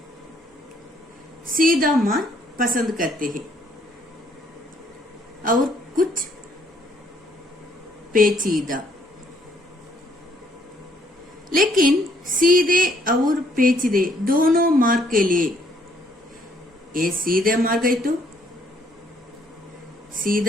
सीधा मार्ग पसंद करते हैं और कुछ पेचीदा। लेकिन सीधे और पेचीदे दोनों मार्ग के लिए ये सीधा मार्ग है तो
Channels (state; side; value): normal; both; correlation 0.67